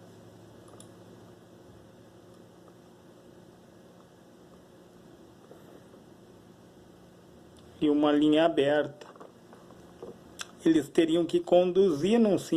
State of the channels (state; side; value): identical; both; correlation 1.00